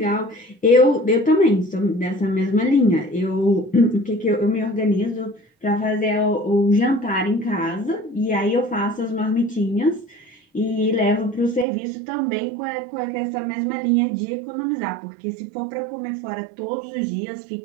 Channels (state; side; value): drops out; left; at 11.7 s